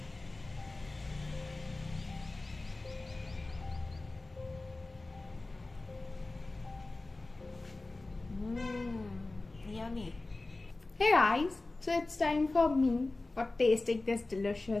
Yummy. Hey guys, so it's time for me for tasting this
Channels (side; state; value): right; quieter; 3.1 dB